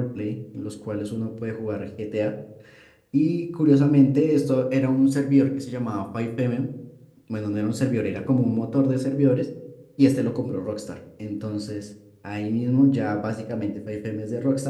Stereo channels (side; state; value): both; identical; correlation 1.00